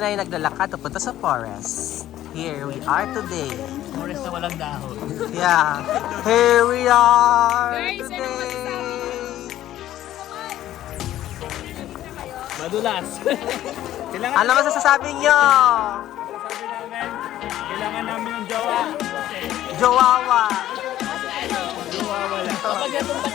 naglalakad papunta sa forest. Here we are today. Forest na walang dahon. Yeah. Here we are today. Madulas. Ano masasabi nyo? Sabi namin, kailangan namin ng jowa. Jowawa. Jowa wala. Kapag napunta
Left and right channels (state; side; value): quieter; right; 13.2 dB